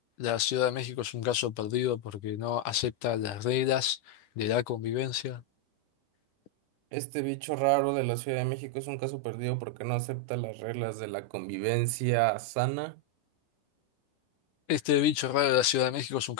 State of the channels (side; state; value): right; late; 10 ms